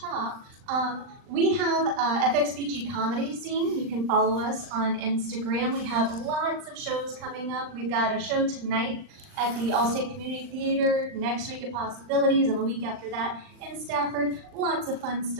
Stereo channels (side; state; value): left; late; 39 ms